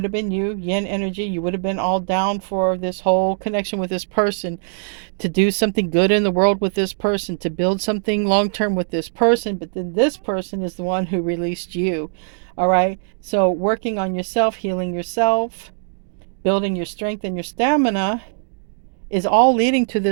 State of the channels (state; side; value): silent; left; digital silence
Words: have been you, Yin energy. You would have been all down for this whole connection with this person, to do something good in the world with this person, to build something long-term with this person. But then this person is the one who released you. All right, so working on yourself, healing yourself, building your strength and your stamina is all leading to